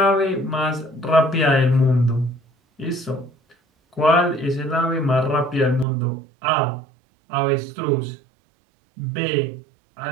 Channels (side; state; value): left; drops out; at 5.9 s